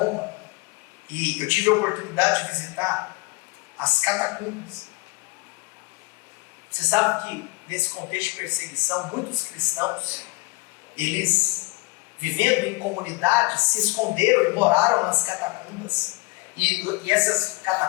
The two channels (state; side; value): quieter; right; 26.1 dB